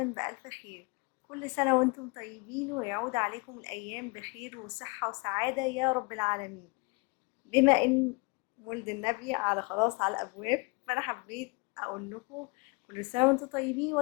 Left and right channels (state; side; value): quieter; right; 29.5 dB